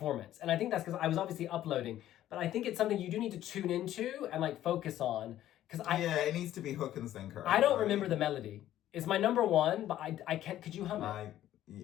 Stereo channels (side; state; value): right; quieter; 12.8 dB